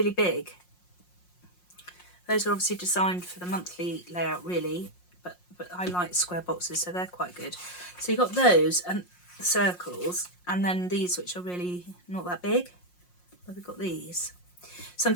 big. Those are obviously designed for the monthly layout, really, but I like square boxes, so they're quite good. So you've got those and circles, and then these which are really not that big. But we've got these. So I'm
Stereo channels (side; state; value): right; late; 5.6 ms